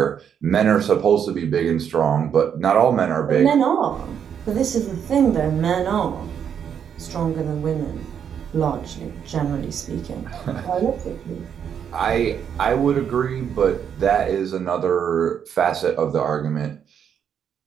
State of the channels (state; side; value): quieter; left; 8.2 dB